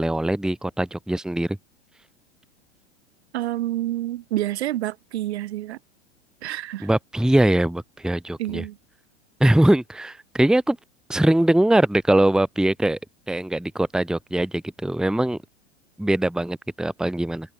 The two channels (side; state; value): both; normal; correlation 0.93